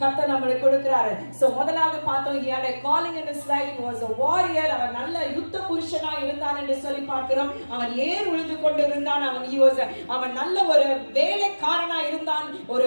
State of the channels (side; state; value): both; inverted; correlation -1.00